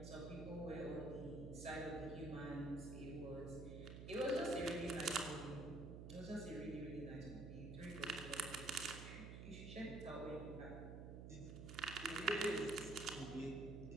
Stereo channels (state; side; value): noise; right; hum, 8 dB below the sound